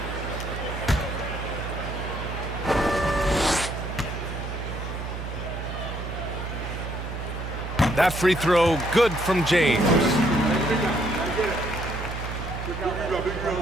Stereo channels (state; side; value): noise; right; hum, 6 dB below the sound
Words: That free throw good from James.